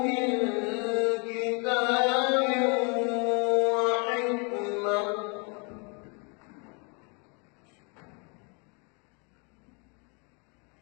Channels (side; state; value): right; quieter; 34.8 dB